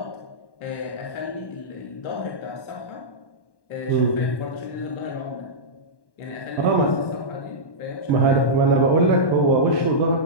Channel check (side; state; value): right; late; 1.1 ms